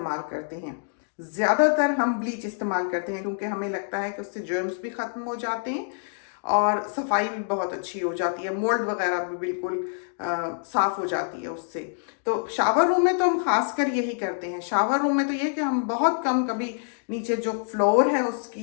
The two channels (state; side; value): silent; right; digital silence